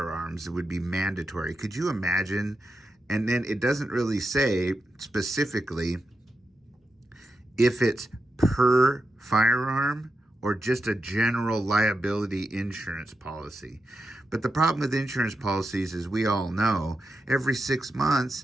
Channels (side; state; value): both; normal; correlation 0.87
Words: It would be mandatory. Could you imagine? And then it doesn't really say specifically if it's per firearm or just a general liability insurance policy. But the problem with insurance policies, as we all know, every 6